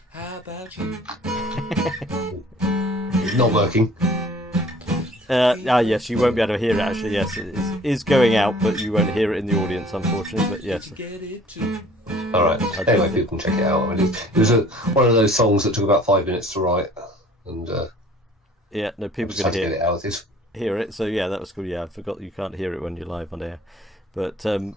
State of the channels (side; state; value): both; normal; correlation 0.52